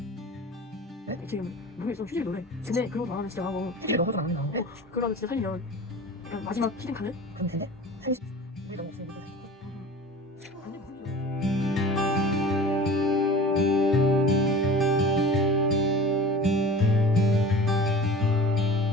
지금 노래 좀 휴지 노래. 근데 그런 거 나가면 진짜 하고. 이게 너무 좀 안 나오고. 그러면 진짜 살면 약간 마지막 히든 카드? 그럼 된대? 우리 너무 없으니까.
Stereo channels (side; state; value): both; normal; correlation 0.39